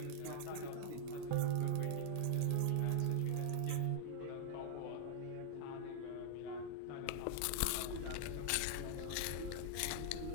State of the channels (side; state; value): both; different; correlation -0.01